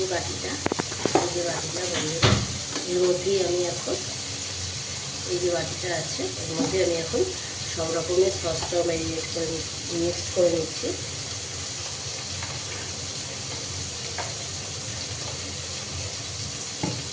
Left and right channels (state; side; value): identical; both; correlation 1.00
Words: বাটিটা বন্ধুরা, এর মধ্যেই আমি এখন, এই যে বাটিটা আছে এর মধ্যে আমি এখন সব রকমের সসটাও ম্যারিনেট করে মিক্সড করে নিচ্ছি।